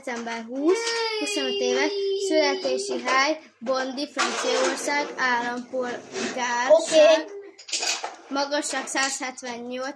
20, 25 éves, születési hely, Bondy, Franciaország, állampolgárság, Oké. magasság 178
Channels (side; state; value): both; identical; correlation 1.00